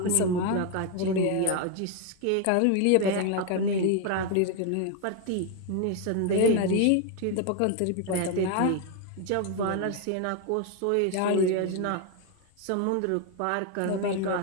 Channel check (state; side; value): different; both; correlation 0.01